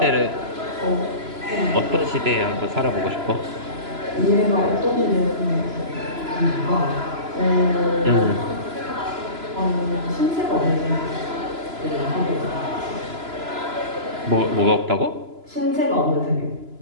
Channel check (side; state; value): left; late; 3.0 ms